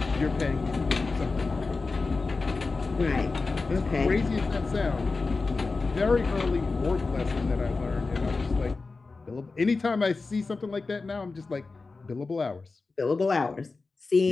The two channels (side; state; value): right; quieter; 3.9 dB